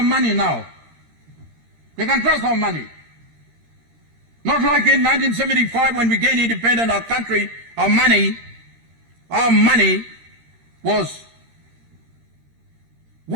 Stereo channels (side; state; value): left; late; 13 ms